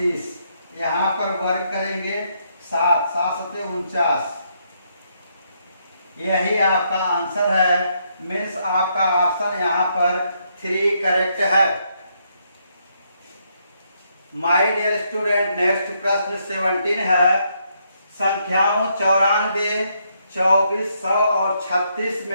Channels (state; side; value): inverted; both; correlation -0.75